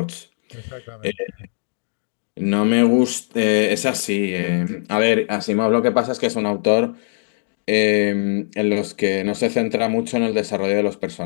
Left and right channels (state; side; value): silent; right; digital silence